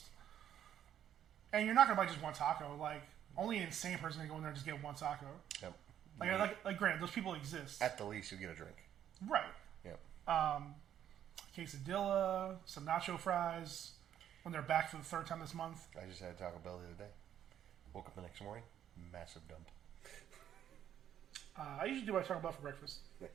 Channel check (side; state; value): left; quieter; 10.3 dB